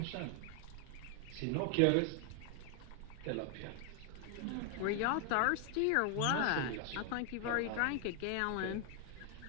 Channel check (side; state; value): both; different; correlation 0.00